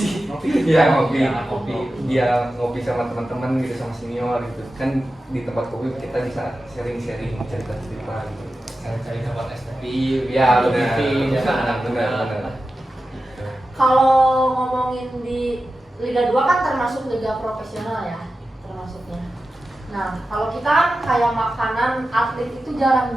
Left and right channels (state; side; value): normal; both; correlation 0.93